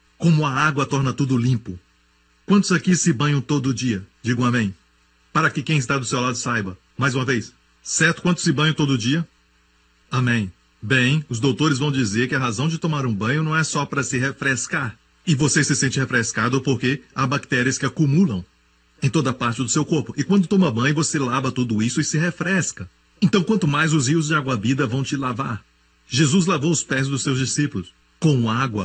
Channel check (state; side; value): identical; both; correlation 1.00